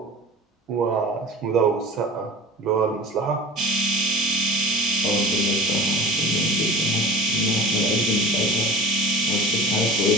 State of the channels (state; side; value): normal; both; correlation 0.37